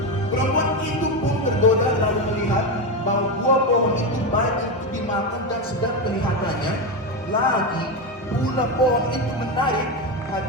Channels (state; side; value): normal; both; correlation 0.13